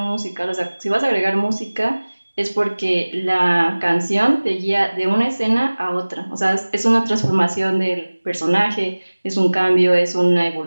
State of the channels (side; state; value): both; inverted; correlation -1.00